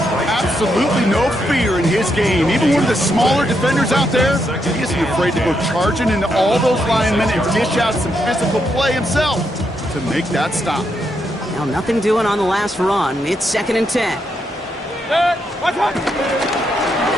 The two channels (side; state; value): both; normal; correlation 0.80